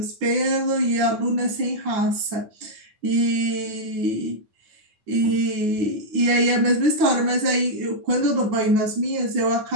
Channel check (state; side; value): late; left; 9.8 ms